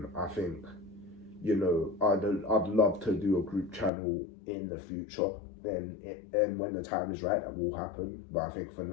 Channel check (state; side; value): drops out; right; at 3.9 s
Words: I think, you know, I'd love to do a group channel in the future, and when the time is right, that will happen. But I think for